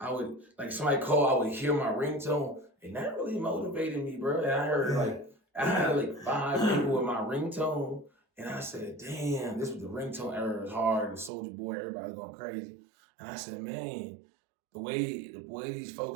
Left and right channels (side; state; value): left; drops out; at 11.3 s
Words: would, like, somebody call, I would hear my ringtone. And that really motivated me, bro. And I heard I had 5 people with my ringtone. And I said, damn, this was the ringtone era. It was hard. Soulja Boy, everybody was going crazy. And I said, man, the way these